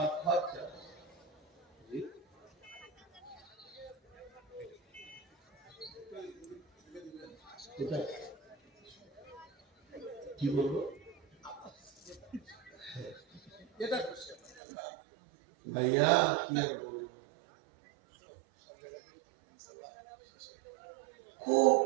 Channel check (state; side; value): drops out; left; at 14.6 s